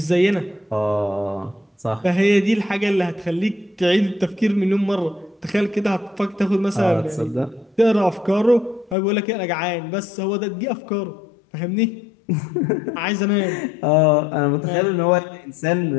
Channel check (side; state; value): right; drops out; at 9.0 s